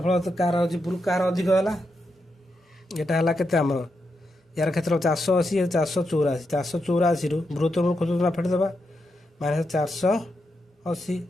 କାହାର ଅଛି? କାହାର ଅଧିକ ହେଲା? ଏଟା ହେଲା କେତେ ଆମର? ୟାର କ୍ଷେତ୍ର 480 484। 484ରୁ ବୃହତ୍ତମ କ୍ଷୁଦ୍ରତମ ଫେଟିଦେବା ମାନେ 480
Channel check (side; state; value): both; normal; correlation 0.84